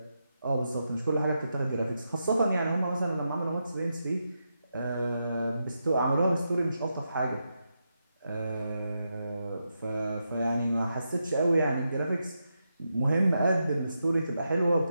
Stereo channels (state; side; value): inverted; both; correlation -0.86